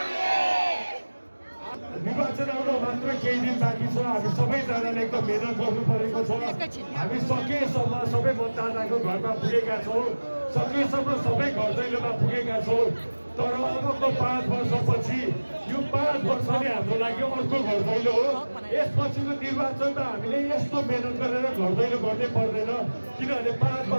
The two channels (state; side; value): inverted; both; correlation -1.00